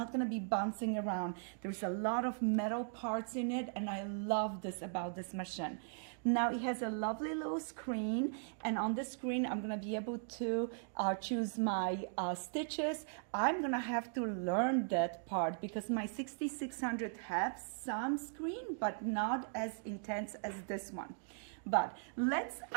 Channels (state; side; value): silent; left; digital silence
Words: gonna be bouncing around. There's a lot of metal parts in it and I love this about this machine. Now it has a lovely little screen, and on the screen I'm gonna be able to choose my stitches. I'm gonna have to learn that part because my 6600 has some screen, but not as intense as this one. But let's